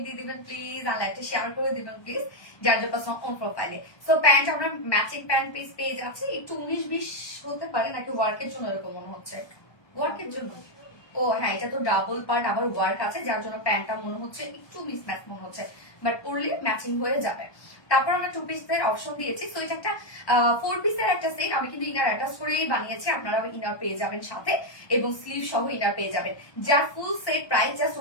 দিয়ে দিবেন প্লিজ, আর লাইভটা শেয়ার করে দিবেন প্লিজ, যার যার পার্সোনাল অন প্রোফাইলে। সো প্যান্ট আমরা ম্যাচিং প্যান্ট পিস পেয়ে যাচ্ছি, একটু 19-20 হতে পারে, নাকি ওয়ার্কের জন্য এরকম মনে হচ্ছে, ওয়ার্কের জন্য। ও হ্যাঁ, এটা তো ডাবল পার্ট আবার ওয়ার্ক আছে, যার জন্য প্যান্টটা মনে হচ্ছে একটু মিসম্যাচ মনে হচ্ছে, বাট পরলে ম্যাচিং হয়ে যাবে। তারপর আমরা 2 পিসের অপশন দিয়েছি। তো এটা একটা 4 পিসের একটা সেট, আমি কিন্তু ইনার অ্যাটাচ করেই বানিয়েছি, আপনারা ইনার পেয়ে যাবেন সাথে, এবং স্লিভ সহ ইনার পেয়ে যাবেন। যার full set price just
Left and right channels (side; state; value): right; late; 1.2 ms